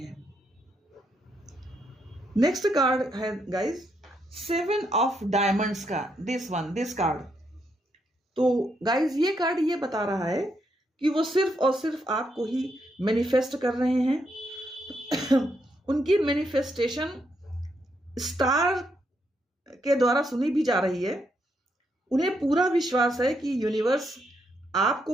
नेक्स्ट कार्ड है गाइस सेवन ऑफ डायमंड्स का दिस कार्ड। तो गाइस ये कार्ड ये बता रहा है कि वो सिर्फ और सिर्फ आपको ही मैनिफेस्ट कर रहे हैं। उनकी मैनिफेस्टेशन स्टार के द्वारा सुनी भी जा रही है। उन्हें पूरा विश्वास है कि यूनिवर्स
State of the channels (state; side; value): normal; both; correlation 0.78